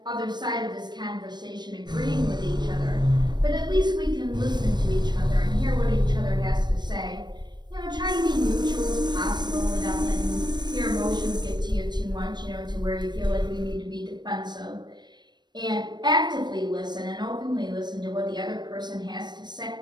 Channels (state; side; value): late; left; 0.21 ms